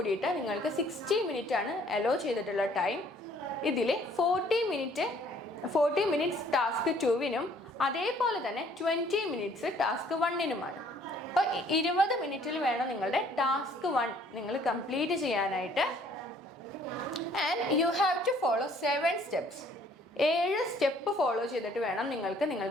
നിങ്ങൾക്ക് 60 മിനിറ്റ് ആണ് അലോ ചെയ്തിട്ടുള്ള ടൈം. ഇതിൽ 40 മിനിറ്റ്സ് ടാസ്ക് 2വിനും അതേപോലെ തന്നെ 20 മിനിറ്റ്സ് ടാസ്ക് 1നുമാണ്. അപ്പോൾ 20 മിനിറ്റിൽ വേണം നിങ്ങളുടെ ടാസ്ക് 1 നിങ്ങൾ കംപ്ലീറ്റ് ചെയ്യാനായിട്ട്. And you have to follow 7 steps. 7 step follow ചെയ്തിട്ട് വേണം നിങ്ങൾക്ക്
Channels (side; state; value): both; normal; correlation 0.60